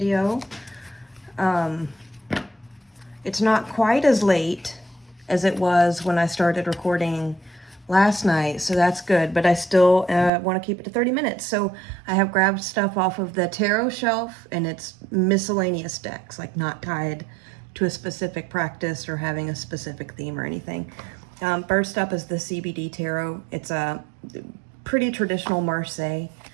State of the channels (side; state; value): left; drops out; at 10.3 s